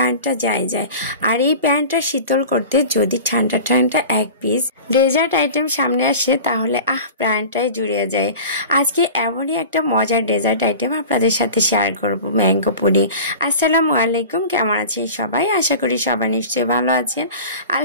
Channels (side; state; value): both; inverted; correlation -0.36